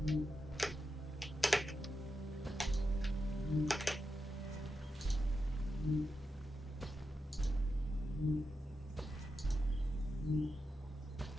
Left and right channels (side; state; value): both; normal; correlation 0.88